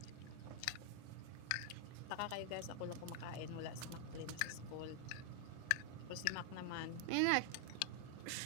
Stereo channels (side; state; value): both; different; correlation 0.00